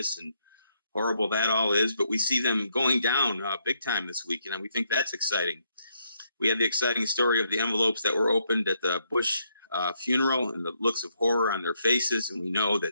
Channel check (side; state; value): both; inverted; correlation -0.75